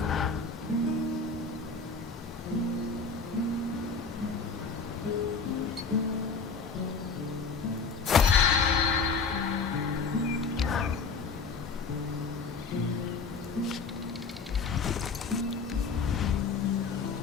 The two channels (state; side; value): quieter; right; 4.9 dB